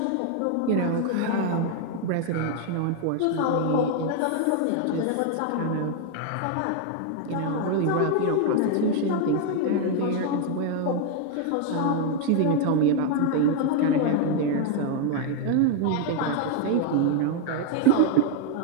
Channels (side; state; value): both; different; correlation 0.00